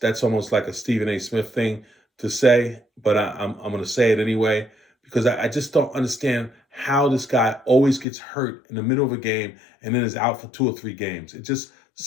almost like a Stephen A. Smith thing to say, but I'm going to say it anyway because I just don't understand how this guy always gets hurt in the middle of a game and then is out for 2 or 3 games. It just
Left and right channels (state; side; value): drops out; right; at 8.1 s